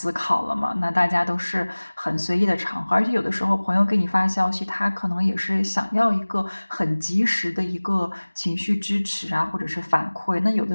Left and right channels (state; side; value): inverted; both; correlation -1.00